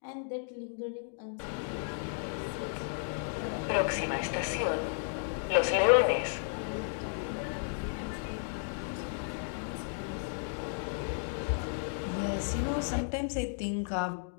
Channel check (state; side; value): silent; right; digital silence